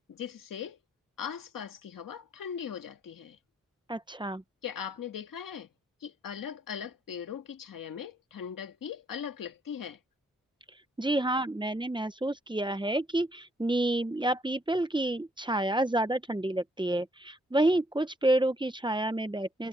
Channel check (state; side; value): normal; both; correlation 0.70